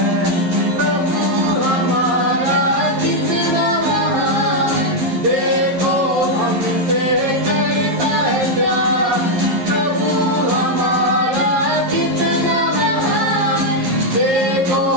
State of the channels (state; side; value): late; left; 11 ms